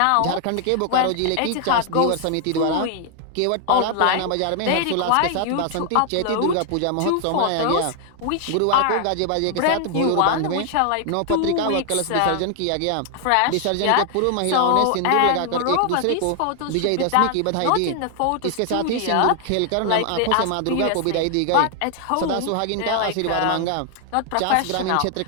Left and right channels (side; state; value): both; different; correlation 0.00